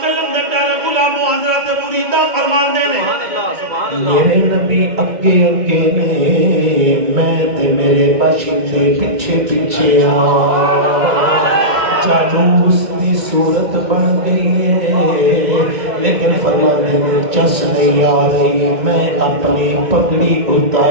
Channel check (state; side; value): late; left; 2.1 ms